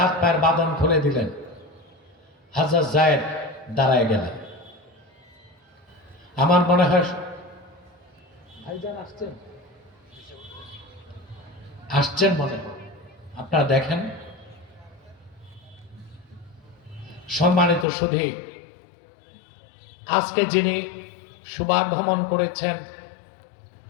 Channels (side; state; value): right; drops out; at 17.9 s